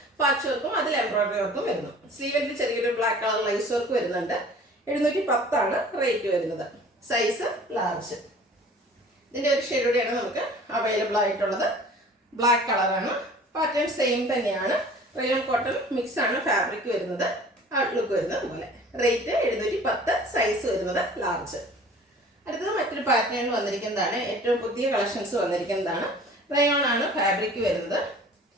പാച്ച് വർക്കും അതിൽ എംബ്രോയിഡറി വർക്കും വരുന്നു. സ്ലീവിൽ ചെറിയൊരു ബ്ലാക്ക് കളർ ലൈസ് വർക്ക് വരുന്നുണ്ട്. 710 ആണ് റേറ്റ് വരുന്നത്. Size large. ഇതിൻ്റെ ഒരു ഷെയ്ഡ് കൂടിയാണ് നമുക്ക് അവൈലബിൾ ആയിട്ടുള്ളത്. ബ്ലാക്ക് കളറാണ്. പാറ്റേൺ സെയിം തന്നെയാണ്. റയോൺ കോട്ടൺ മിക്സ് ആണ് ഫാബ്രിക് വരുന്നത്. ഔട്ട്ലുക്ക് വരുന്നത് പോലെ. റേറ്റ് 710. സൈസ് വരുന്നത് ലാർജ്. അടുത്തത് മറ്റൊരു പാറ്റേൺ വന്നിരിക്കുന്നതാണ്, ഏറ്റവും പുതിയ കളക്ഷൻസ് വന്നിരിക്കുന്നതാണ്. റയോൺ ആണ് ഫാബ്രിക് വരുന്നത്.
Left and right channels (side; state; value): both; normal; correlation 0.47